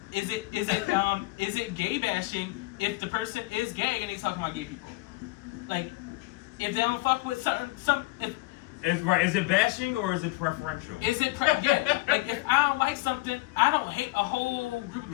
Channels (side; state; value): right; quieter; 21.4 dB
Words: Is it gay bashing if the person is gay and he's talking about gay people? Like, if they don't fuck with Is it bashing or is it preferential? Yeah. Like if I don't like something, I don't hate a whole group of